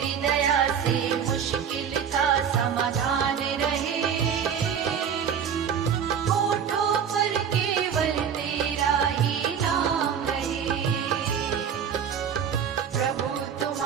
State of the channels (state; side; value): quieter; left; 7.8 dB